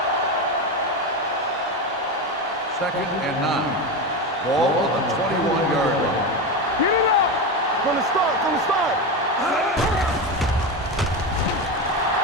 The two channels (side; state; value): both; normal; correlation 0.18